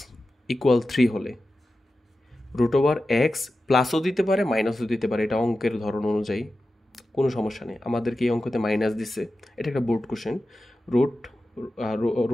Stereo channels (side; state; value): both; normal; correlation 0.93